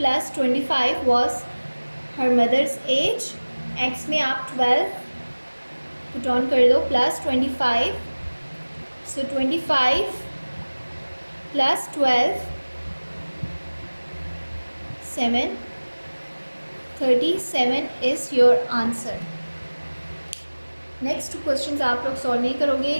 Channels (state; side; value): inverted; both; correlation -1.00